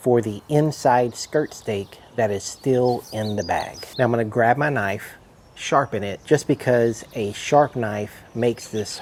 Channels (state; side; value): identical; both; correlation 1.00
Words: the inside skirt steak that is still in the bag. Now I'm going to grab my knife, sharpen it, just because a sharp knife makes this